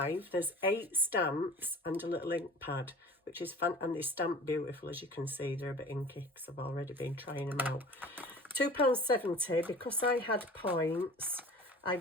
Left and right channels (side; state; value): both; normal; correlation 0.42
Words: There's 8 stamps and a little ink pad, which is fun, and they stamp beautiful, as you can see. They're a bit inky because I've already been trying them out. £2.70. Because I had points, I